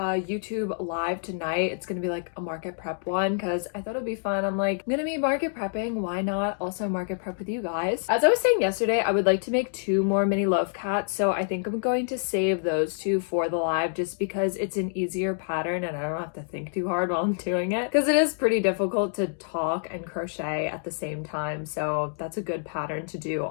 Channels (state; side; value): silent; right; digital silence